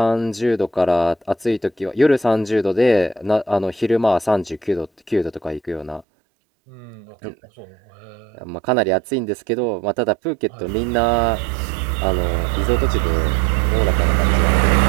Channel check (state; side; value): drops out; left; at 6.1 s